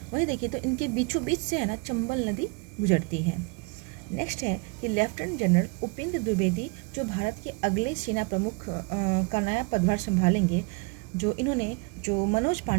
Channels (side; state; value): left; quieter; 30.4 dB